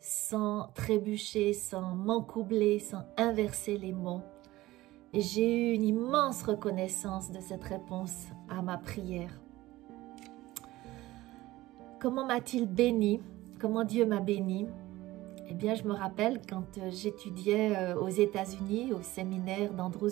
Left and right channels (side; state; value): left; quieter; 17.6 dB